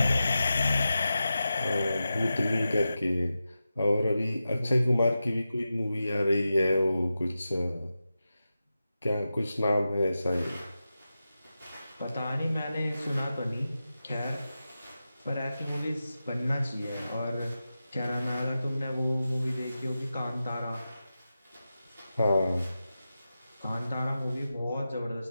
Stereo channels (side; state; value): both; inverted; correlation -0.92